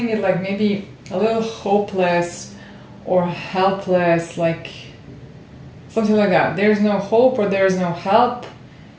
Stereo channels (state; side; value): identical; both; correlation 1.00